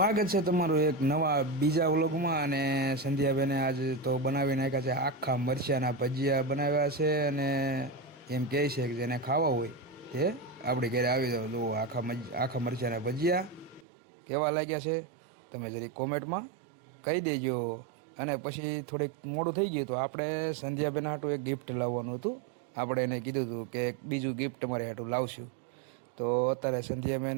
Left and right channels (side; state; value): left; drops out; at 13.9 s